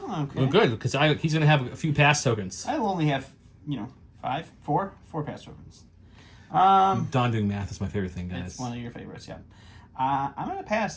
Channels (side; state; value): both; identical; correlation 1.00